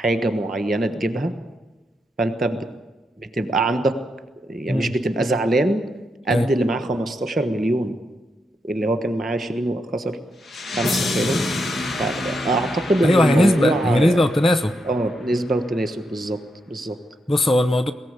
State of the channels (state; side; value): normal; both; correlation 0.82